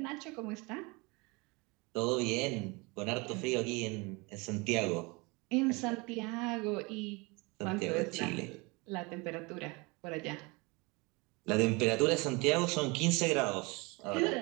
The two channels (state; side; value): quieter; left; 26.9 dB